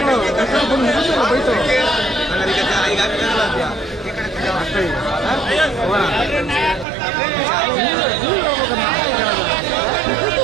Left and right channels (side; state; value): left; drops out; at 6.9 s